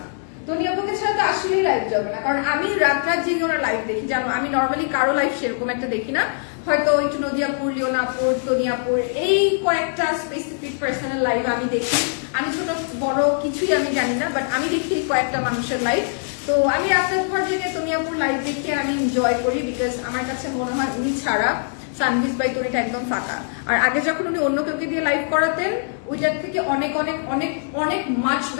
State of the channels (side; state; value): right; silent; digital silence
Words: তনিয়াপুকে ছাড়া তো আসলেই লাইভ জমে না। কারণ আমি রাত রাত জেগে ওরা লাইভ দেখি, জানো? আমি নর্মালি কারো লাইভ সেরকম একটা দেখি না, হয়তো একটু নদিয়াপুর, লিওনাপুর, তনিয়াপুর, এই কয়েকটা স্পেসিফিক পার্সনের লাইভ আমি দেখি। আমি ছোট বড় কিছুই আমি জানি না, বাট আমি দেখি কয়েকটা মানুষের লাইভ। তো আমি রাতের পর জেগে তনিয়াপুর লাইভ দেখে আমি এনজয় করি, বিকজ আমার কাছে মনে হয় উনি ছাড়া সানভিস বাই টনিটা একদম ফাঁকা। আর আগে যখন উনি অন্য কাউকে দিয়ে লাইভ করাতেন, ওইটার থেকে অনেক অনেক অনেক অনেক মাচ